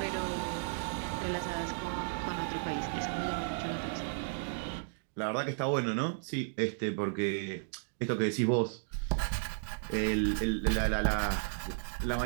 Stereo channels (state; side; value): silent; left; digital silence